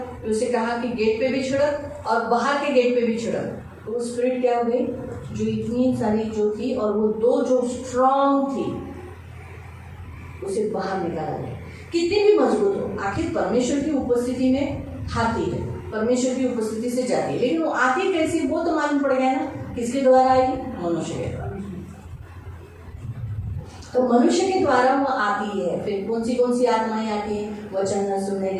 तो उसे कहा कि गेट पे भी छिड़क और बाहर के गेट पे भी छिड़क. तो वो स्पिरिट क्या हो गई, जो इतनी सारी जो थी और वो 2 जो स्ट्रांग थी उसे बाहर निकाला गया. कितनी भी मजबूत हो, आखिर परमेश्वर की उपस्थिति में आती है, परमेश्वर की उपस्थिति से जाती है, लेकिन वो आती कैसी वो तो मालूम पड़ गया ना, किसके द्वारा आएगी, मनुष्य के द्वारा. तो मनुष्य के द्वारा वो आती है. फिर कौन सी आत्माएं आती हैं, वचन न सुनने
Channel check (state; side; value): identical; both; correlation 1.00